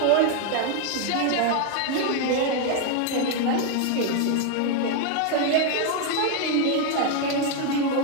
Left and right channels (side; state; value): both; different; correlation 0.01